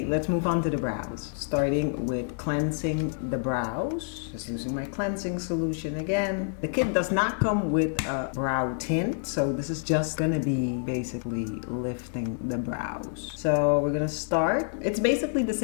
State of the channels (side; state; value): right; silent; 59 dB below the other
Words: let's move on to the brows. Starting with cleansing the brows. Just using my cleansing solution again. The kit does not come with a brow tint, so this is just gonna be basically lifting the brows. So we're gonna start. It's basically the